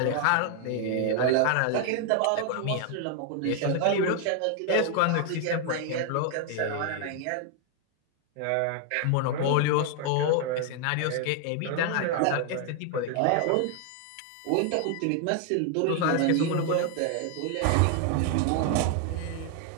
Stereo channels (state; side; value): different; both; correlation 0.00